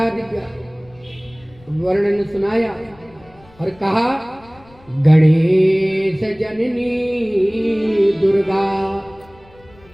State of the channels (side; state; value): left; noise; rumble, 27 dB below the sound